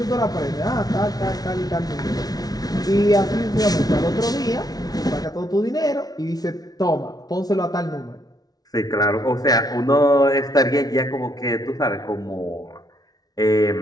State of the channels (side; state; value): right; late; 0.19 ms